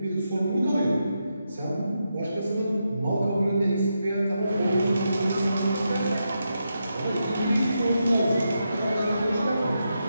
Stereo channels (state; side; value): inverted; both; correlation -0.85